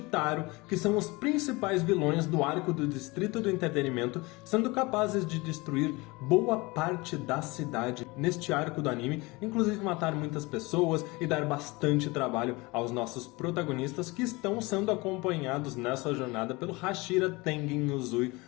que são os principais vilões do arco do Distrito do Entretenimento, sendo capazes de destruir boa parte da cidade neste arco do anime, inclusive matar muitas pessoas e dar bastante trabalho aos nossos protagonistas que estão sendo acompanhados nessa jornada pelo Hashira Tengen Uzui,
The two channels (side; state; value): right; quieter; 24.0 dB